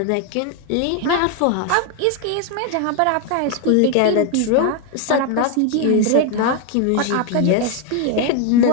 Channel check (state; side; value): different; both; correlation 0.01